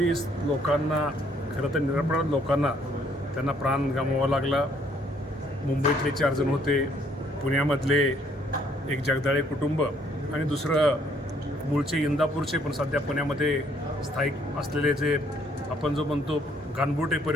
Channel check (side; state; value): both; normal; correlation 0.66